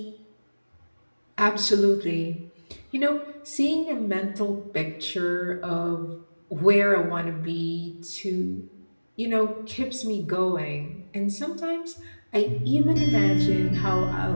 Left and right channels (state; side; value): inverted; both; correlation -1.00